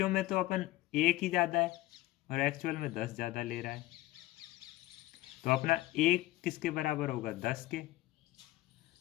में तो अपन 1 ही ज़्यादा है और एक्चुअल में 10 ज़्यादा ले रहा है, तो अपना 1 किसके बराबर होगा, 10 के,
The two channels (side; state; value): right; quieter; 17.2 dB